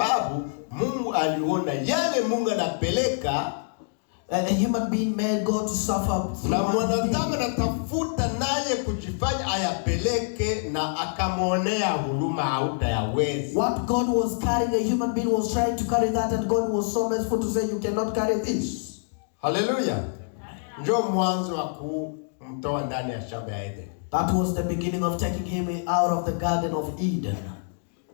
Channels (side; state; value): right; silent; digital silence